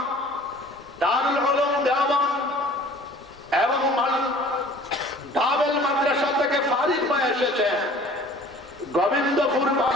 দারুল উলুম দেওবন্দ এবং দাবেল মাদ্রাসা থেকে ফারিগ হয়ে এসেছে, গোবিন্দপুর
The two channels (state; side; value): normal; both; correlation 0.49